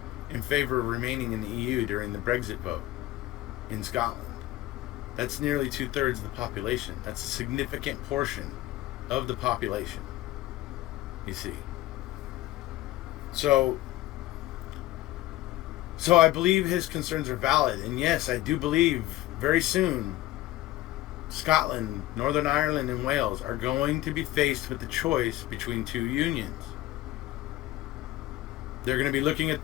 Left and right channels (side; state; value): right; quieter; 16.2 dB